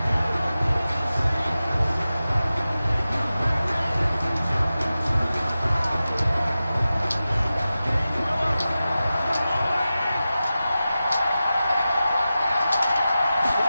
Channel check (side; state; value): both; inverted; correlation -0.94